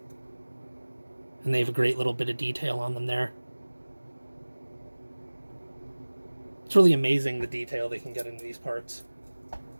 and they have a great little bit of detail on them there. It's really amazing the detail they can get into these parts.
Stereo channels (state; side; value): inverted; both; correlation -1.00